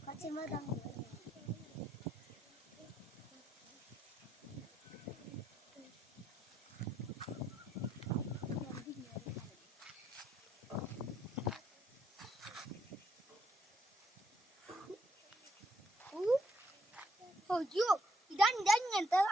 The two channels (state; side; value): normal; both; correlation 0.73